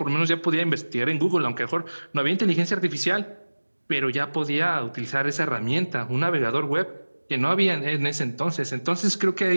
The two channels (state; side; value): inverted; both; correlation -1.00